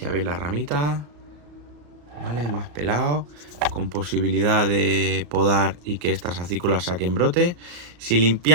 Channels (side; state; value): left; late; 34 ms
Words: veis la ramita. ¿Vale? Más pelado. Con posibilidad de podar y que estas acículas saquen brotes. Si